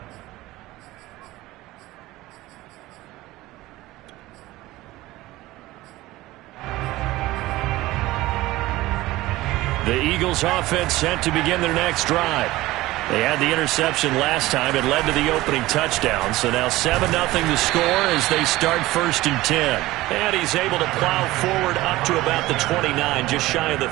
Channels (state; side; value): quieter; left; 17.9 dB